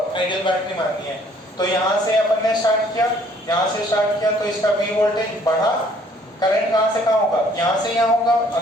आइडियल बैटरी माननी है। तो यहाँ से अपन ने स्टार्ट किया, तो इसका V वोल्टेज बढ़ा, करंट कहाँ से कहाँ होगा? यहाँ से यहाँ होगा,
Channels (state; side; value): normal; both; correlation 0.60